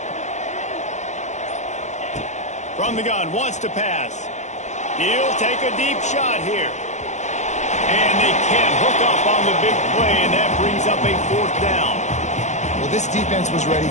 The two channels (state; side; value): late; right; 0.34 ms